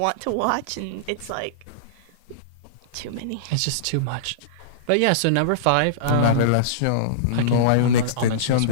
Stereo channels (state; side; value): different; both; correlation -0.03